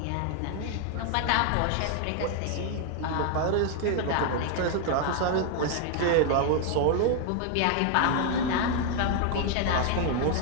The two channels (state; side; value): different; both; correlation 0.00